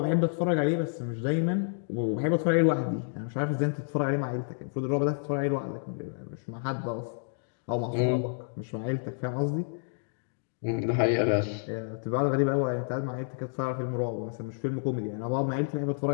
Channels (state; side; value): silent; right; digital silence